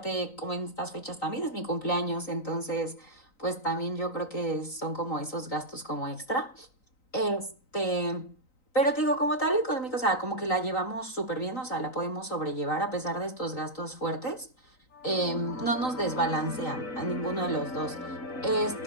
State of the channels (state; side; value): late; right; 3.9 ms